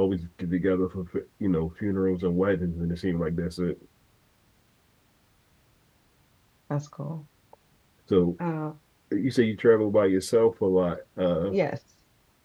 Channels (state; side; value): identical; both; correlation 1.00